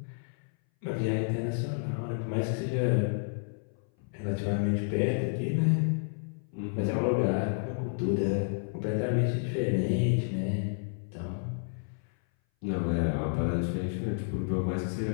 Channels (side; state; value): right; silent; 57 dB below the other